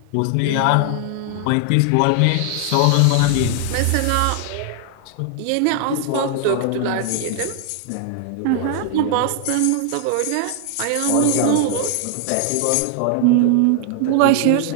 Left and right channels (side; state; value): both; different; correlation 0.00